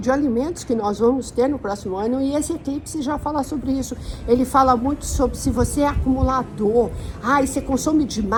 de alimentos que nós vamos ter no próximo ano, e esse eclipse já fala sobre isso. Ele fala muito sobre se você é acumulador, e você consome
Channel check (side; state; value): both; identical; correlation 1.00